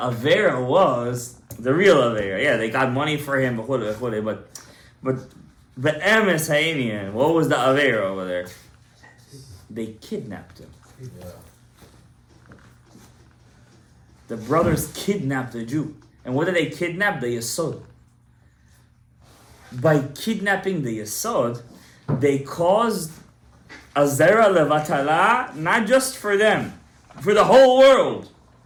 was the real Avera. Yeah, they got money for him, but the Emes Hainian, what was the Avera over there? They kidnapped him. Yeah. The brothers kidnapped the Jew. And what did they kidnap? The Yesod. By kidnapping the Yesod, they caused a Zera Levatala, not just for them, for the whole world.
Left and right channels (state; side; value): identical; both; correlation 1.00